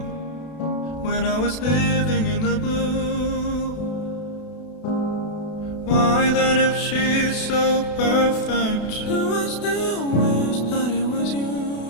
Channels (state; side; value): late; right; 32 ms